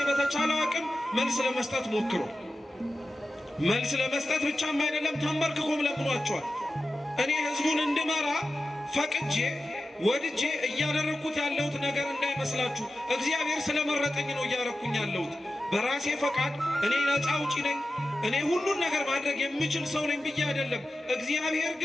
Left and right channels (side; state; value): both; normal; correlation 0.93